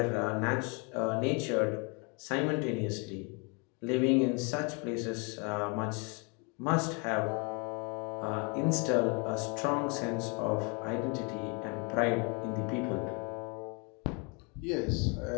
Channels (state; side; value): quieter; right; 33.5 dB